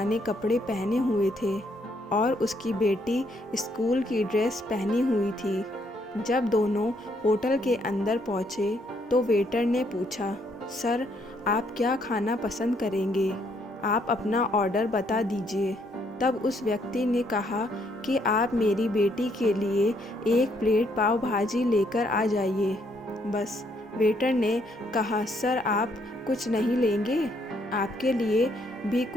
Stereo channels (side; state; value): both; normal; correlation 0.71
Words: कपड़े पहने हुए थे और उसकी बेटी स्कूल की ड्रेस पहनी हुई थी। जब दोनों होटल के अंदर पहुंचे तो वेटर ने पूछा, सर, आप क्या खाना पसंद करेंगे? आप अपना ऑर्डर बता दीजिए। तब उस व्यक्ति ने कहा कि आप मेरी बेटी के लिए एक प्लेट पाव भाजी लेकर आ जाइए। बस। वेटर ने कहा, सर, आप कुछ नहीं लेंगे? आपके लिए भी